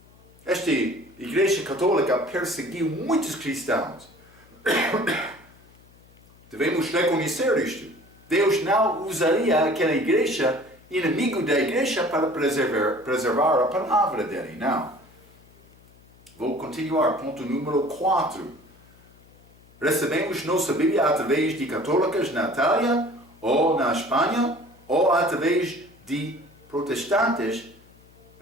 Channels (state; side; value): noise; left; hum, 27 dB below the sound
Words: Esta igreja católica perseguiu muitos cristãos. Devemos reconhecer isto. Deus não usaria aquela igreja, inimigo da igreja, para preservar a palavra dele. Não. Vou continuar. Ponto número 4. Recebemos nossa Bíblia através de católicas na Itália, ou na Espanha, ou através de protestantes